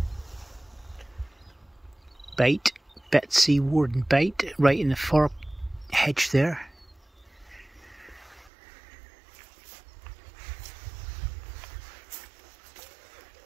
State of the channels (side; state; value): left; drops out; at 8.5 s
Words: Bate. Betsy Warden Bate, right in the far hedge there.